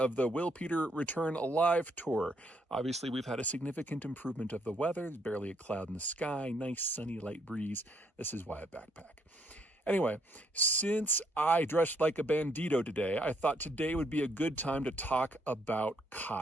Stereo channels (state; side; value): normal; both; correlation 0.71